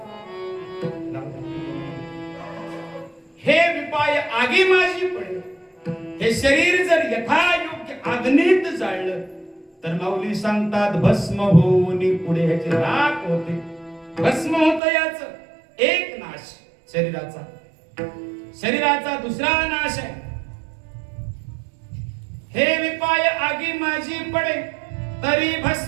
हे विपाय आगी माझी पडे, हे शरीर जर यथायोग्य अग्नीत जाळलं तर माऊली सांगतात भस्म होऊन पुढे ह्याचे राख होते, भस्म होत. याच एक नाश शरीराचा. शरीराचा दुसरा नाश आहे. हे विपाय आगी माझी पडे तरी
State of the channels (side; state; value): left; drops out; at 14.8 s